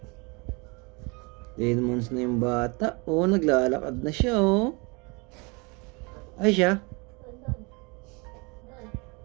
10 months na yung bata. Oh, naglalakad na siya oh. Ay siya? Doon. Doon.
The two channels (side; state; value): left; quieter; 29.0 dB